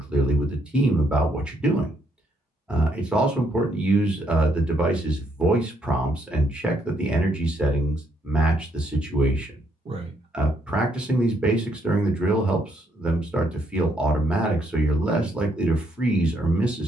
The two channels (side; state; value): both; normal; correlation 0.73